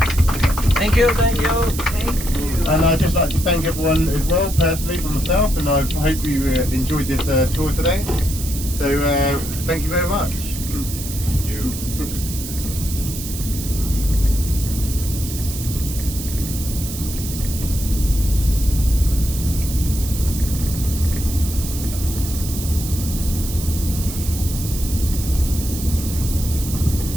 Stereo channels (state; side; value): noise; right; hiss, 9 dB below the sound